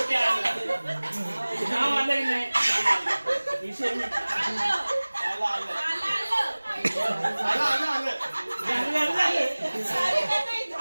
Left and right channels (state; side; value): inverted; both; correlation -1.00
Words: आलं. नाव आलंय नाही विषय